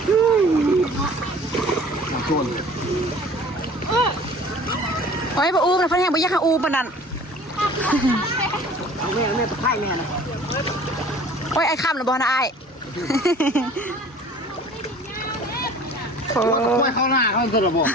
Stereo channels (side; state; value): both; normal; correlation 0.47